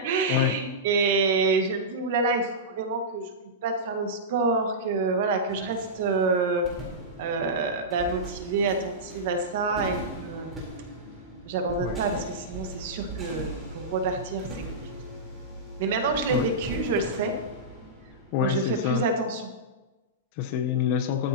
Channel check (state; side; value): normal; both; correlation -0.14